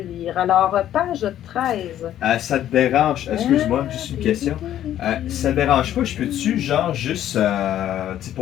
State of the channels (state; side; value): quieter; right; 11.7 dB